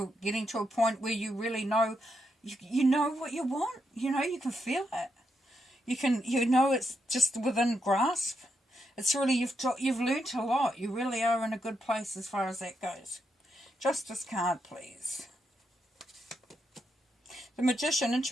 getting to a point where you really know, you know what you want. You can feel it. It's just within grasp. It's really, you've learnt a lot. You really are in a good place as far as that goes. Justice card, please. The Magician,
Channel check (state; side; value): normal; both; correlation 0.82